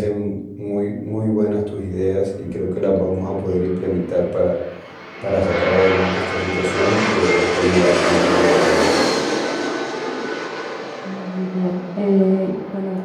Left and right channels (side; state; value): both; identical; correlation 1.00